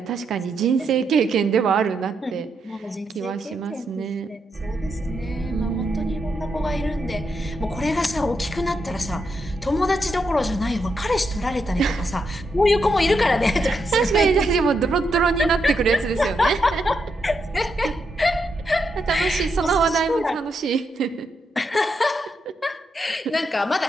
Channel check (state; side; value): normal; both; correlation 0.82